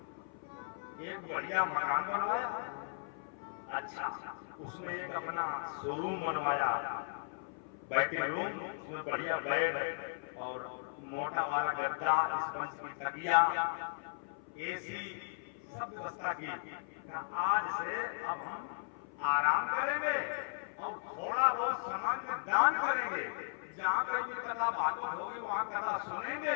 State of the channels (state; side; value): silent; right; 53 dB below the other